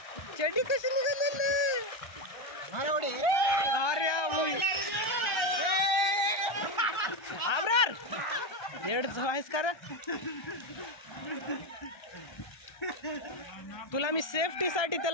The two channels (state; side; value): late; right; 1.3 ms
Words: चेडी कशी निघाली अरे आबरार येड आहेस का रे तुला मी सेफ्टी साठी